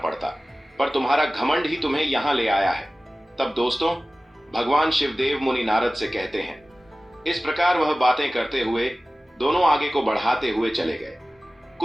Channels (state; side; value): normal; both; correlation 0.96